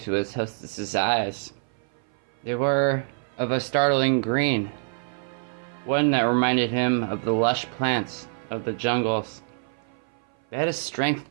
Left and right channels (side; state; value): left; silent; 58 dB below the other